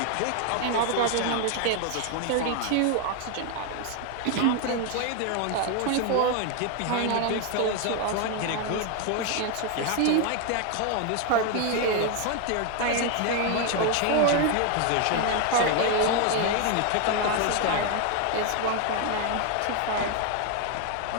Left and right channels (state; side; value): different; both; correlation 0.01